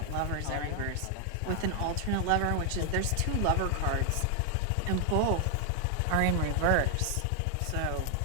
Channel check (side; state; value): both; different; correlation 0.00